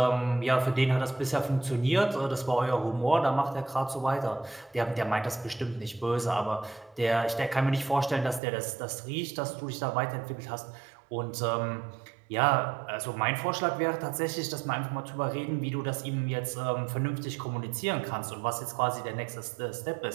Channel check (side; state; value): left; drops out; at 8.4 s